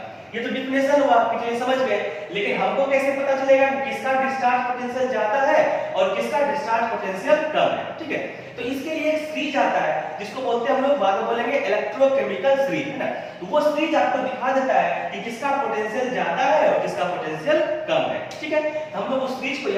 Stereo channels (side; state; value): both; identical; correlation 1.00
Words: ये तो डिफिनेशन हुआ आपके लिए समझ गए, लेकिन हमको कैसे पता चलेगा कि किसका डिस्चार्ज पोटेंशियल ज्यादा है और किसका डिस्चार्ज पोटेंशियल कम है। ठीक है, तो इसके लिए एक सीरीज आता है जिसको बोलते हैं हम लोग बाद में बोलेंगे इलेक्ट्रोकेमिकल सीरीज, है ना। तो वो सीरीज आपको दिखा देता है कि किसका पोटेंशियल ज्यादा है और किसका पोटेंशियल कम है। ठीक है, हम लोग उस सीरीज को